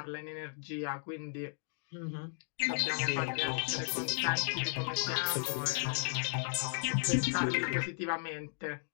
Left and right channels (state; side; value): silent; right; digital silence